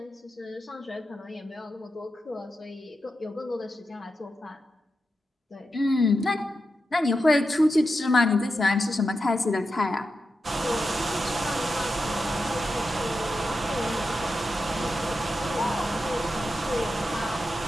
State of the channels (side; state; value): both; normal; correlation 0.89